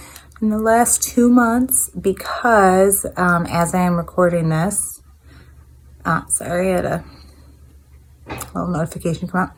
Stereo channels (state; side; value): identical; both; correlation 1.00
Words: in the last 2 months because as I am recording this, sorry, I had a little notification come up.